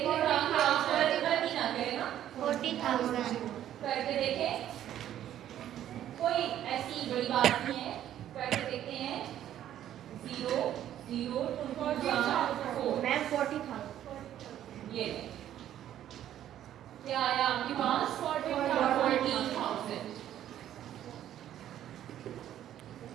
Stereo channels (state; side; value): quieter; left; 11.5 dB